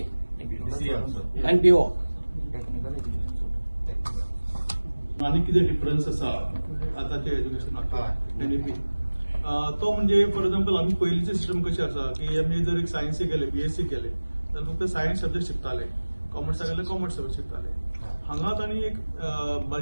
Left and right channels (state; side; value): inverted; both; correlation -1.00